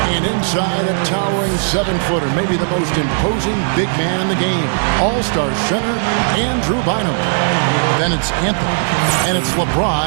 And inside, a towering 7-footer, maybe the most imposing big man in the game. All-Star center, Andrew Bynum. Then it's Anthony, and it's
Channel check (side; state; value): left; silent; 69 dB below the other